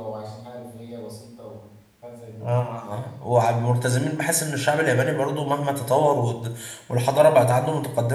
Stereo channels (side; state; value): both; identical; correlation 1.00